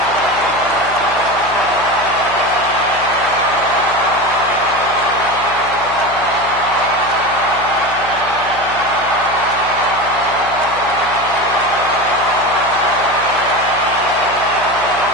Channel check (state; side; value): noise; left; hum, 16 dB below the sound